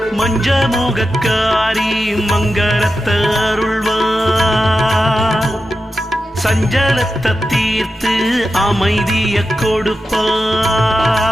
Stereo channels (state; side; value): normal; both; correlation 0.90